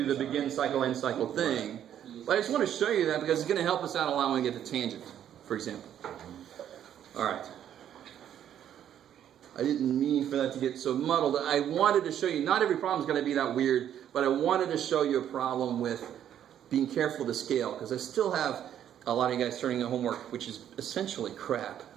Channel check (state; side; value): quieter; left; 10.2 dB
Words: the begin cycle, end cycle thing. But I just want to show you that because it's going to help us out a lot when we get to tangent, for example. All right. I didn't mean for that to get so muddled. I wanted to show you, not every problem is going to be that weird, but I wanted to show you a problem with being careful to scale, because I still have a lot of you guys turning in homework, which is essentially crap.